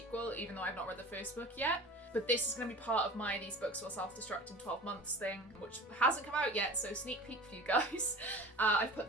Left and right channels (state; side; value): normal; both; correlation 0.39